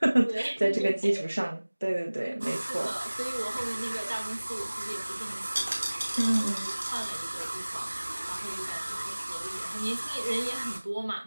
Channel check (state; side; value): inverted; both; correlation -1.00